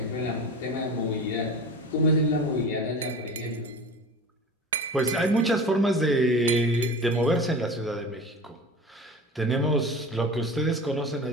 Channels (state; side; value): normal; both; correlation 0.35